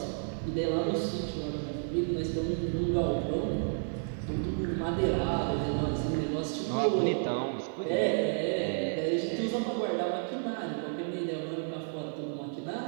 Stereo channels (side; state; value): left; silent; digital silence